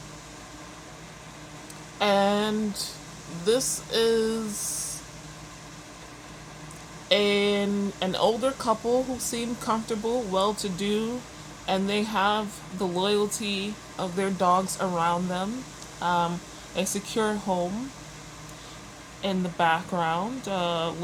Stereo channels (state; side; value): identical; both; correlation 1.00